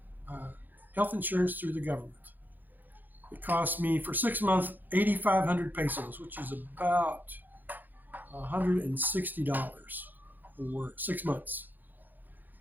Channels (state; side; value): late; left; 0.086 ms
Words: health insurance through the government. It cost me for 6 months 8,500 pesos, which is about $160 for 6 months.